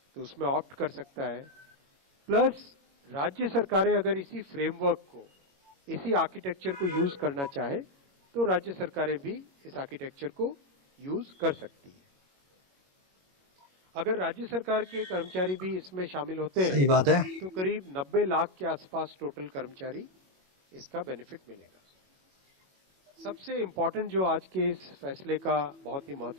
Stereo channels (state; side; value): late; left; 21 ms